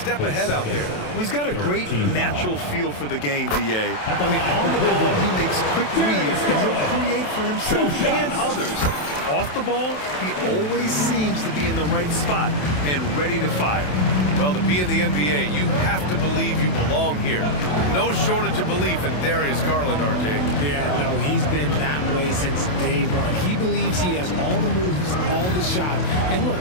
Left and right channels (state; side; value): late; right; 27 ms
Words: ahead out there. Well, he's got a great natural feel for the game, B.A. I mean, on the ball, he makes quick reads, and he'll create for himself and others. Off the ball, he always seems to be in the right spot and ready to fire. Well, to be in the NBA, you have to believe you belong here. No shortage of belief in Darius Garland, RJ. Yeah, no, he's been that way since day one. He believes he has all the moves, all the shots. And look,